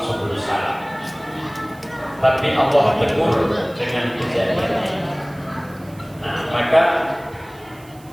Subulu Salam. Tapi Allah tegur dengan kejadian ini. Nah, maka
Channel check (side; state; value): right; noise; hiss, 26 dB below the sound